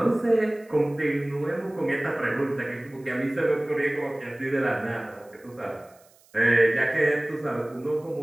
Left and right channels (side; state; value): right; noise; hiss, 30 dB below the sound